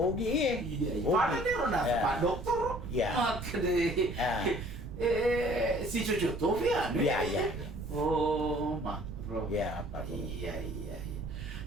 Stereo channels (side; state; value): right; noise; rumble, 9 dB below the sound